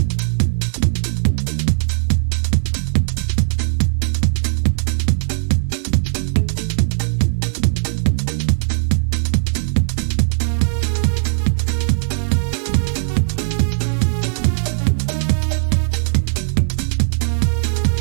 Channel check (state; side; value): silent; left; 67 dB below the other